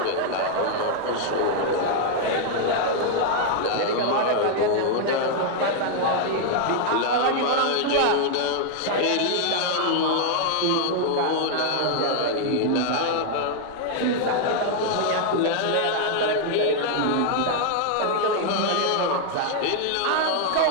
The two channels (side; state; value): both; different; correlation 0.00